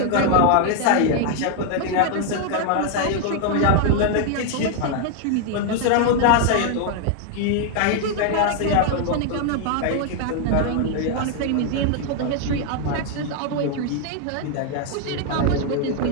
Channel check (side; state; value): both; different; correlation 0.00